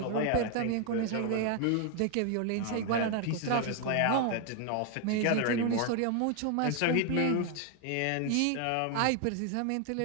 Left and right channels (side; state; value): both; different; correlation 0.01